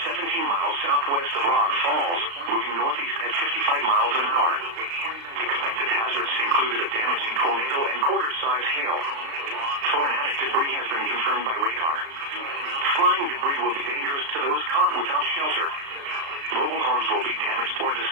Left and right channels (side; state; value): left; late; 35 ms